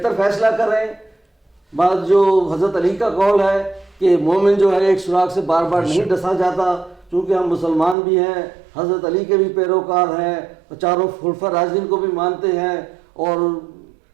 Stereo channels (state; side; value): drops out; left; at 8.0 s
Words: فیصلہ کریں. بعد جو حضرت علی کا قول ہے کہ مومن جو ہے ایک سراغ سے بار بار نہیں ڈسا جاتا, چونکہ ہم مسلمان بھی ہیں, حضرت علی کے بھی پیروکار ہیں, چاروں خلفاء راشدین کو بھی مانتے ہیں, اور